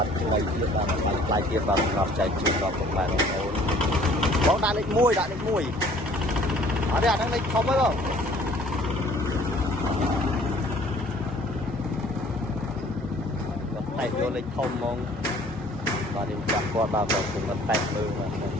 ទថ្មីទៀតបាទថ្លៃទៀតបាទសម្រាប់ចែកជូនដល់ពុកម៉ែបងប្អូនបងដាក់លេខ1ដាក់លេខ1អត់ទេអាហ្នឹងលេខធំហើយបងតែយកលេខធំហ្មងបាទនេះចាំគាត់បាទគាត់គឺមិនតែមើលបាទគាត់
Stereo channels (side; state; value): both; normal; correlation 0.55